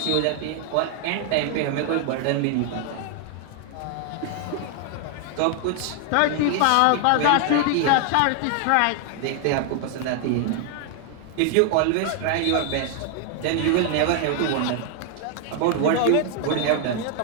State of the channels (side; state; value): both; different; correlation 0.00